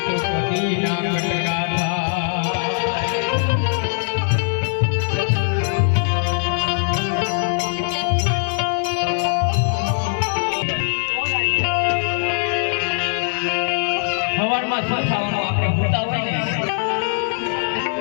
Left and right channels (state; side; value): silent; right; digital silence